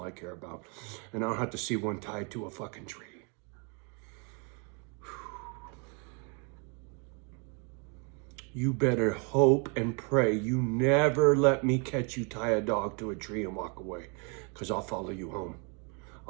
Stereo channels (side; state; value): left; quieter; 36.1 dB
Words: I care about. And I don't have to see one tied to a fucking tree. You better hope and pray you never let me catch you tie a dog to a tree and walk away, because I'll follow you home.